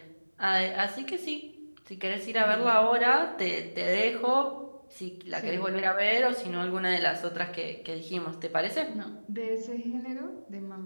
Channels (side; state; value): both; inverted; correlation -1.00